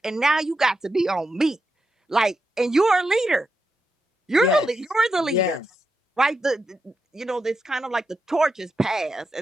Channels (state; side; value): normal; both; correlation 0.86